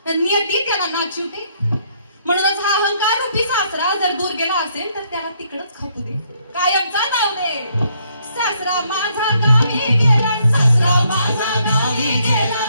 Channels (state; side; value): inverted; both; correlation -0.70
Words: नियती त्याला नाचवते. म्हणूनच हा अहंकार रूपी सासरा जर दूर गेला असेल तर त्याला तिकडच खपू दे, कायमचा नाव दे. सासरा माझा गावी गेला, सासरा माझा गावी गेला,